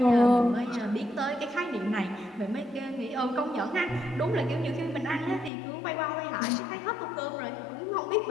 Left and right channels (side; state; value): right; drops out; at 5.5 s